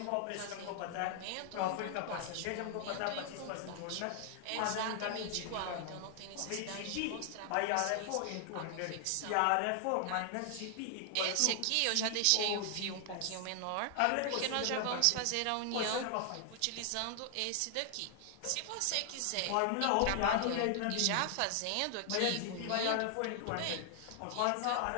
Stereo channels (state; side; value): different; both; correlation 0.00